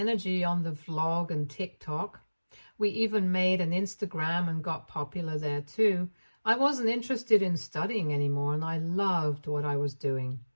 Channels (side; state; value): both; inverted; correlation -1.00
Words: on the vlog and TikTok. We even made an Instagram and got popular there too. I wasn't interested in studying anymore, and I loved what I was doing.